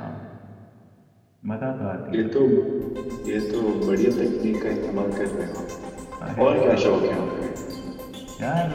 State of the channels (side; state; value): both; identical; correlation 1.00